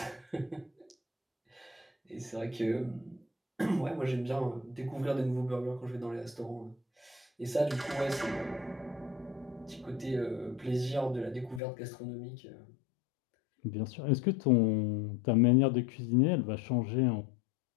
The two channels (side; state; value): right; drops out; at 11.6 s